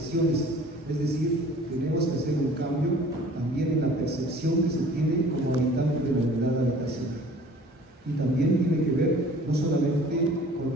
Es decir, tenemos que hacer un cambio también en la percepción que se tiene como habitante de la unidad habitacional. Y también tiene que ver no solamente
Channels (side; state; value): both; normal; correlation 0.49